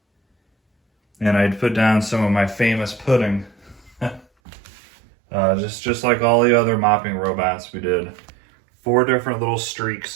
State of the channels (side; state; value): left; drops out; at 4.2 s